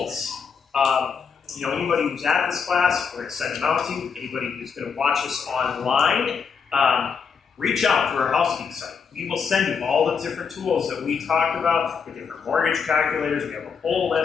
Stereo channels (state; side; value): quieter; right; 6.1 dB